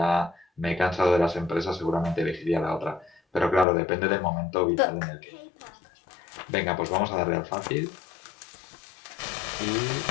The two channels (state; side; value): drops out; right; at 3.7 s